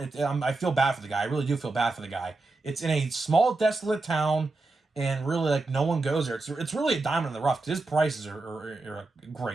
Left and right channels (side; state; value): left; quieter; 3.4 dB